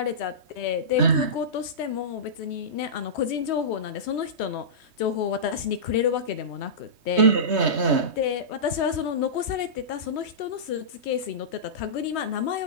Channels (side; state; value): left; late; 3.2 ms